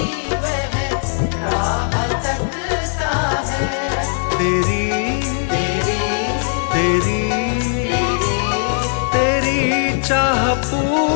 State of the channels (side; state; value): right; silent; digital silence